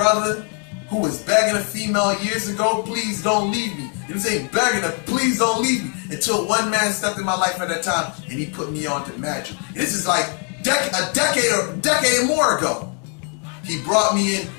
who was begging a female years ago, please don't leave me. You know what I'm saying? Begging her, please don't leave me. Until one man stepped in my life at that time and he put me on to magic. This is like a decade or more ago. He brought me in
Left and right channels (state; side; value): quieter; right; 39.3 dB